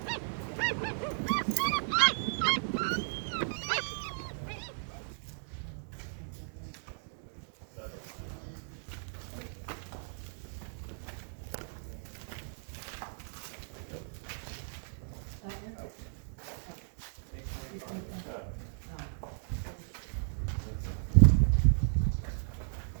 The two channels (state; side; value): silent; left; digital silence